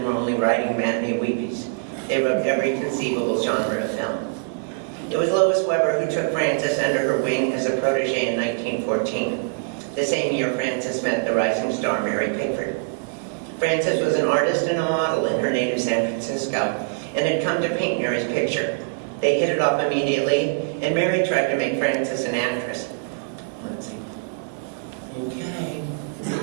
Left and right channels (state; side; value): silent; left; 63 dB below the other